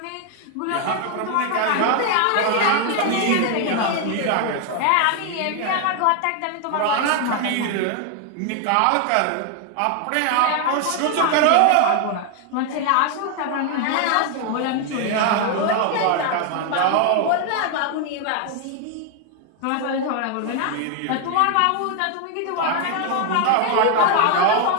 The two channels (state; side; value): different; both; correlation 0.00